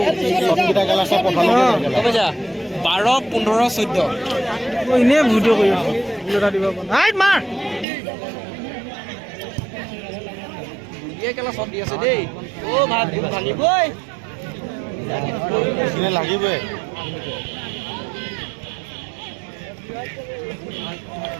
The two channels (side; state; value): left; drops out; at 7.9 s